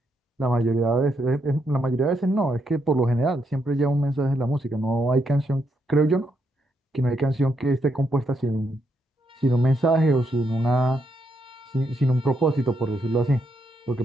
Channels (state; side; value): normal; both; correlation 0.78